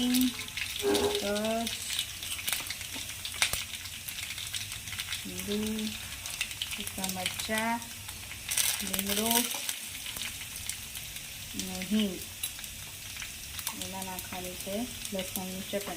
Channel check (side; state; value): both; identical; correlation 1.00